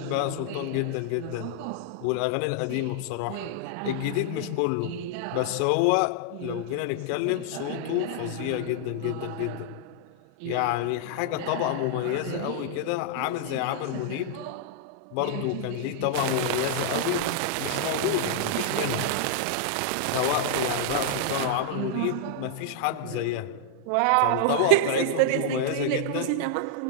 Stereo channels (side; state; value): both; different; correlation -0.01